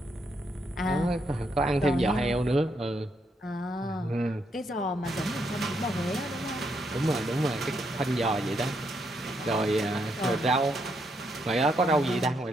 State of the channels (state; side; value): normal; both; correlation 0.77